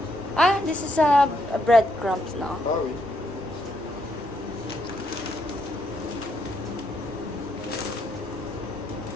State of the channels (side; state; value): right; noise; rumble, 21 dB below the sound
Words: Ah, this is a breadcrumbs now. Ah oui.